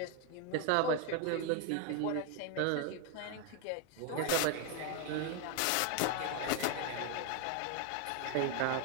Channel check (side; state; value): both; different; correlation 0.01